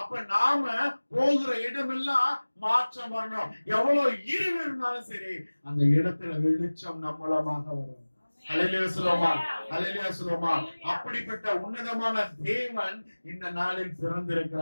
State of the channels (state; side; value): inverted; both; correlation -1.00